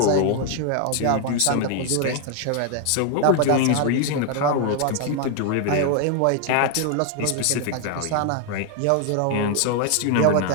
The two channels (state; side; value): different; both; correlation 0.01